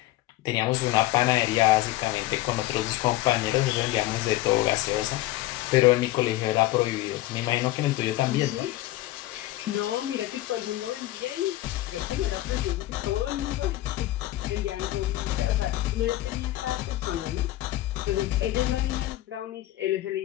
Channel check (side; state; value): right; quieter; 16.2 dB